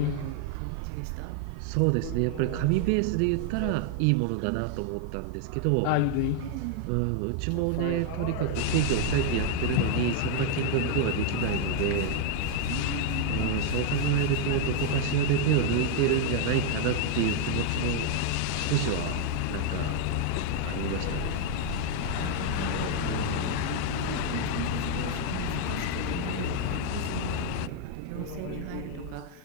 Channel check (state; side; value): different; both; correlation 0.00